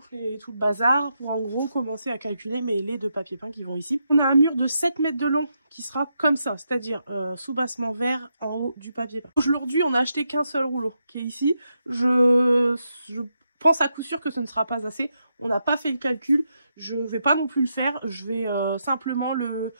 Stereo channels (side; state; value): both; inverted; correlation -0.82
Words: et tout le bazar pour en gros commencer à calculer mes laits de papier peint qui vont ici. On a un mur de 7 mètres de long qui sera comme ça, c'est-à-dire sous-bassement vert en haut du papier peint. Aujourd'hui on a acheté qu'un seul rouleau qui est ici. Je pense à coup sûr que ce ne sera pas assez. On n'a pas fait le calcul, je vais pas non plus le faire, je vais simplement